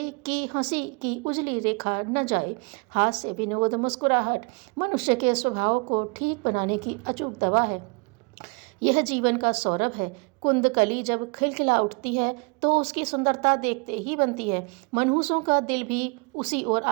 की हंसी की उजली रेखा न जाए। हास्य, विनोद, मुस्कुराहट मनुष्य के स्वभाव को ठीक बनाने की अचूक दवा है। यह जीवन का सौरभ है। कुंदकली जब खिलखिला उठती है तो उसकी सुंदरता देखते ही बनती है। मनहूसों का दिल भी उसी ओर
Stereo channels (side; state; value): left; quieter; 30.9 dB